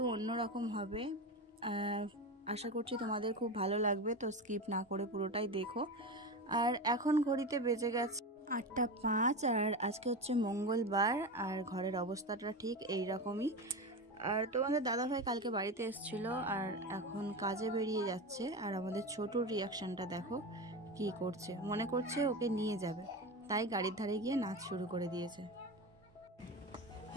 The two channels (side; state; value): both; normal; correlation 0.22